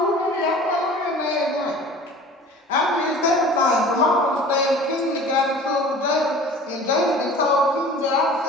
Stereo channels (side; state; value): both; normal; correlation 0.43